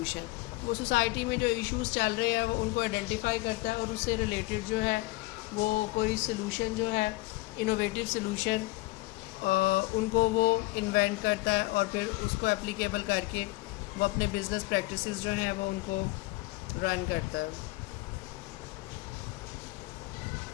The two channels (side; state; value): right; quieter; 21.0 dB